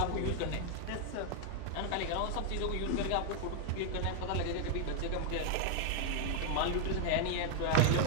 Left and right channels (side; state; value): both; different; correlation 0.00